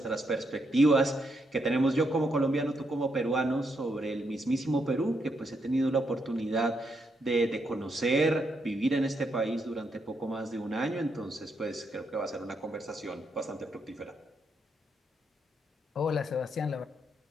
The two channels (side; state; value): both; normal; correlation 0.79